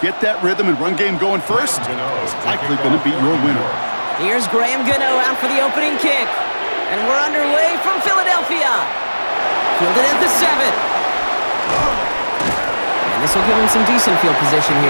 get that rhythm and run game going first is likely going to be your winner. Here's Graham Gano out for the opening kick. And we're underway from Philadelphia. Fielded at the 7. And this will give him some decent field position here,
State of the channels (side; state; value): both; inverted; correlation -1.00